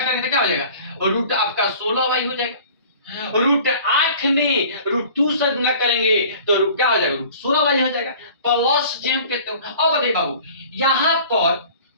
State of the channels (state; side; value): inverted; both; correlation -0.46